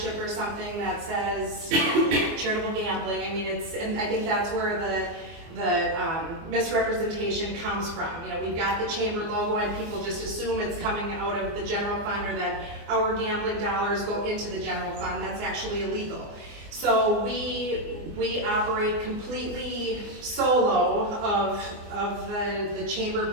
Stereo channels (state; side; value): late; left; 24 ms